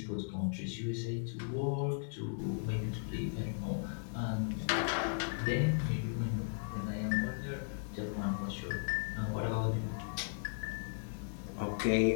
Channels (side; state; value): right; silent; digital silence